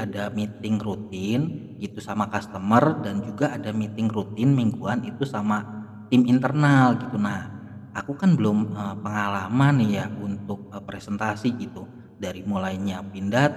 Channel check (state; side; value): identical; both; correlation 1.00